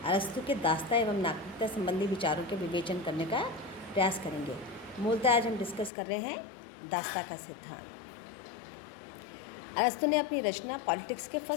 अरस्तु के दास्ता एवं नागरिकता संबंधी विचारों के विवेचन करने का प्रयास करेंगे। मूलतः आज हम डिस्कस कर रहे हैं दास्ता का सिद्धांत। अरस्तु ने अपनी रचना पॉलिटिक्स के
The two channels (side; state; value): right; drops out; at 5.9 s